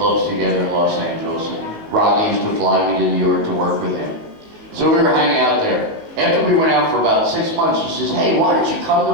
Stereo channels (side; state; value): left; late; 19 ms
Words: together in Los Angeles. And Rodney used to fly me to New York to work with him. So we were hanging out there. After we went out for about 6 months, he says, hey, why don't you come to